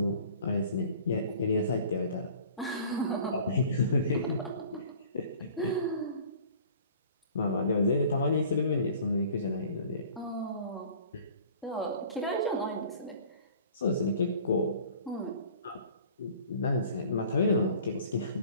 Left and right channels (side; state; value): both; inverted; correlation -0.47